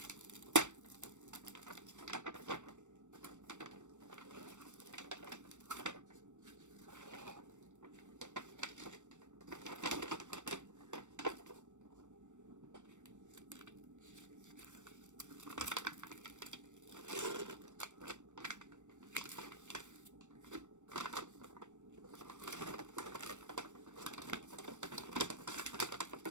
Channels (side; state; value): left; late; 0.85 ms